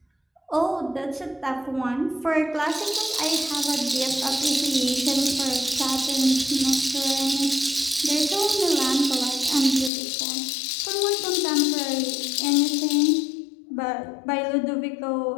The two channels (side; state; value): right; drops out; at 9.9 s